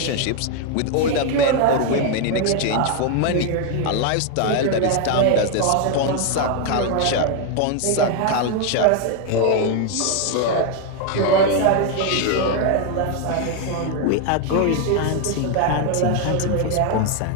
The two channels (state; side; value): different; both; correlation 0.01